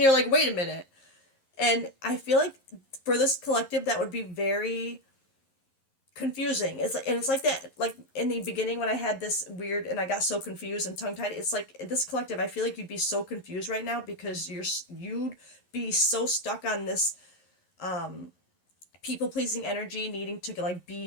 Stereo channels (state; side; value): late; right; 11 ms